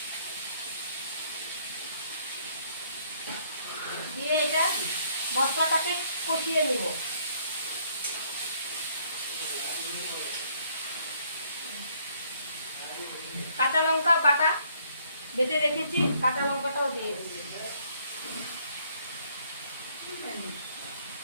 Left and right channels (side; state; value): both; inverted; correlation -0.66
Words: দিয়ে এটা মশলাটাকে কষিয়ে নেব। কাঁচা লঙ্কা বাটা বেটে রেখেছি, কাঁচা লঙ্কাটাও দিয়ে দিচ্ছি।